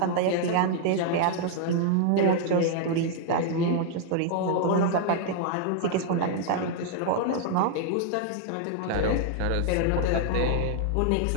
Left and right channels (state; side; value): different; both; correlation -0.01